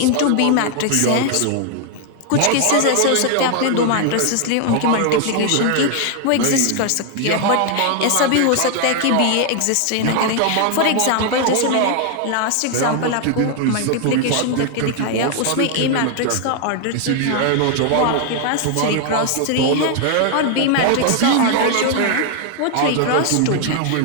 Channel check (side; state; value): both; different; correlation 0.00